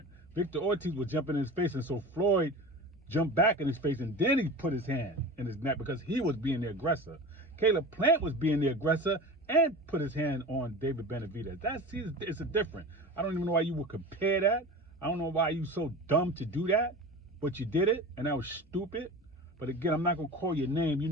Victor Ortiz was jumping in his face, and so Floyd jumped back in his face, and then he put his hand in his neck because he was being the aggressor. Caleb Plant was being the aggressor and put his hand on David Benavidez. It's a different. I don't even know why you would compare that. I don't know why you so dumb to do that, but you did it, and that was stupid. But again, I'm not gonna call your name. You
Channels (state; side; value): normal; both; correlation 0.33